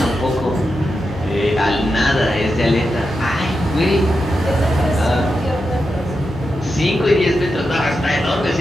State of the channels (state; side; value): normal; both; correlation 0.88